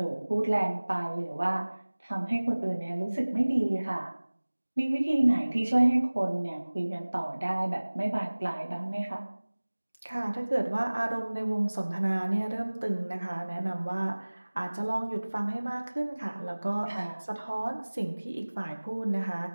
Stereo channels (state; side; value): inverted; both; correlation -1.00